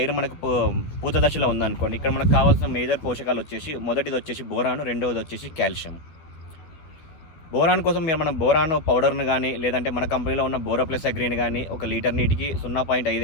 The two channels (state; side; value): late; right; 13 ms